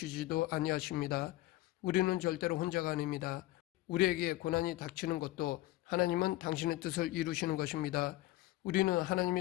아니하십니다. 우리는 절대로 혼자가 아닙니다. 우리에게 고난이 닥치는 것도 하나님은 당신의 뜻을 이루시는 것입니다. 우리는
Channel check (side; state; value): right; quieter; 17.0 dB